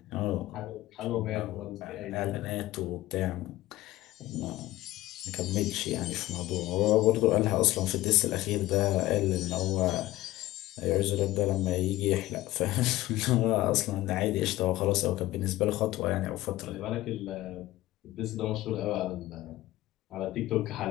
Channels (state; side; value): quieter; right; 16.6 dB